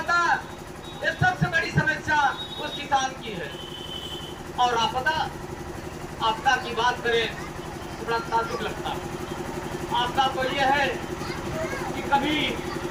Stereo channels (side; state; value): both; identical; correlation 1.00